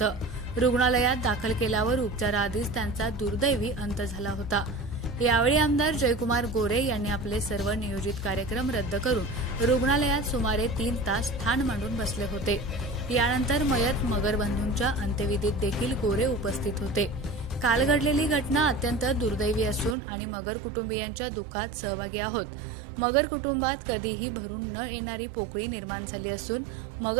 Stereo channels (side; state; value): left; drops out; at 20.0 s